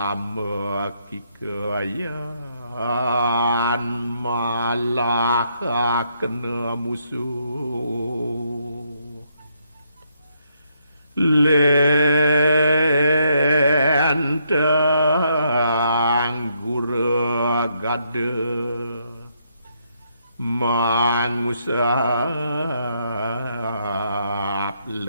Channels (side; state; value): both; inverted; correlation -0.75